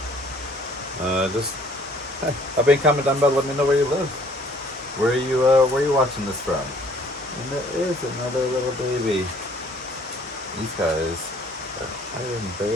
I've been comment down below, let me know where you live, where are you watching this from. And there is another little baby. These guys are hiding and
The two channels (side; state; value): both; normal; correlation 0.58